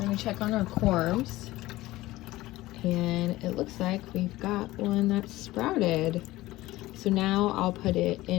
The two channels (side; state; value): right; quieter; 17.7 dB